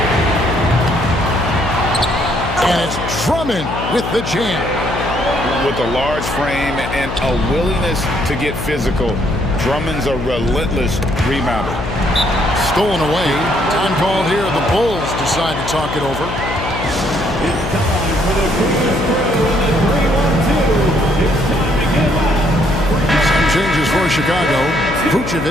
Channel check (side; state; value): left; noise; hum, 6 dB below the sound